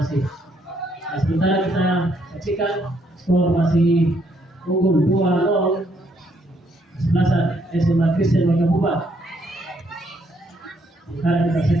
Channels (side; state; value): both; normal; correlation 0.71